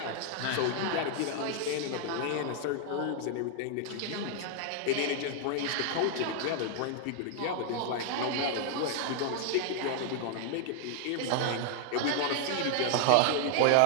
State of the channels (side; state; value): both; different; correlation 0.00